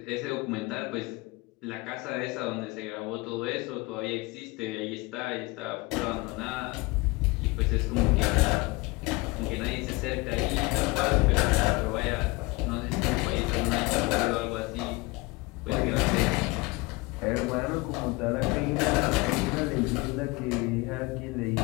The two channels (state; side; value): quieter; right; 24.1 dB